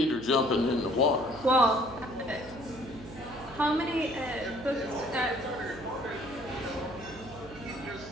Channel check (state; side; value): noise; right; hum, 17 dB below the sound